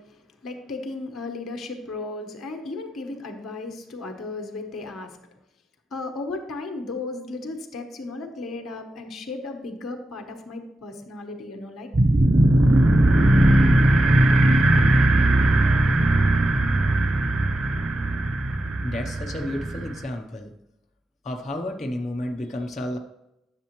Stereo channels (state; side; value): normal; both; correlation 0.89